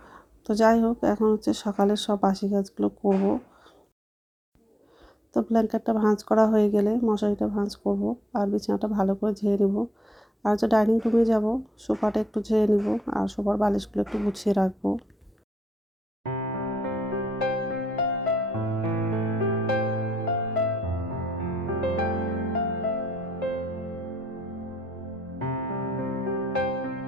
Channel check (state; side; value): normal; both; correlation 0.78